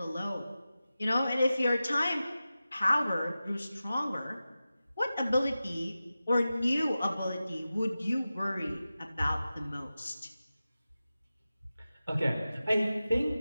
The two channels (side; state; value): both; inverted; correlation -0.94